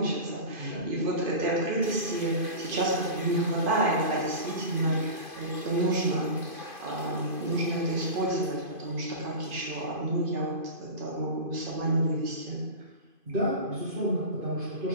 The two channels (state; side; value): late; left; 2.5 ms